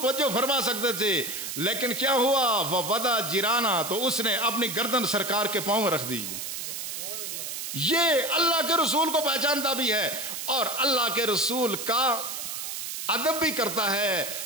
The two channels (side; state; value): right; noise; hiss, 5 dB below the sound